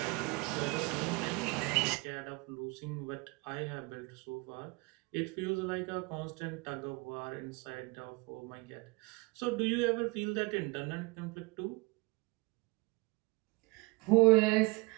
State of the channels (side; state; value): left; quieter; 25.9 dB